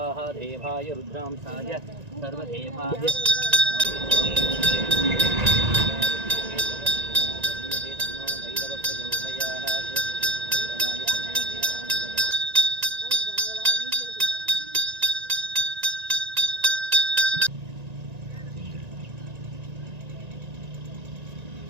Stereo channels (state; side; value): late; left; 1.9 ms